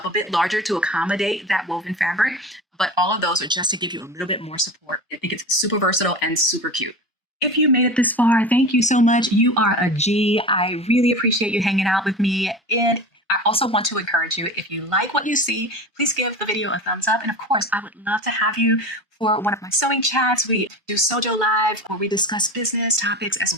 a bit larger to accommodate that woven fabric. But all of those are just to give you a little bit more support. I think it's super versatile and super cute. If you made it this far, thank you so much. You are a G. I really appreciate you hanging out with me. And I also want to encourage you, if you like what you see, please give the video a thumbs up. And of course, I would love to have you for one of my sewing chats. We do Sojo Live, where we discuss business topics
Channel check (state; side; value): normal; both; correlation 0.31